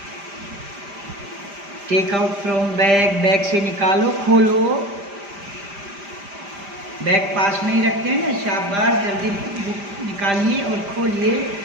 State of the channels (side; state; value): left; late; 5.0 ms